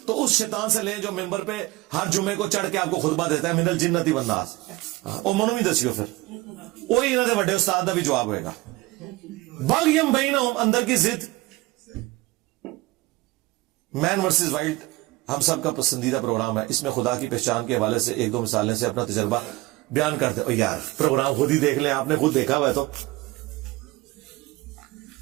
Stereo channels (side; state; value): left; quieter; 20.1 dB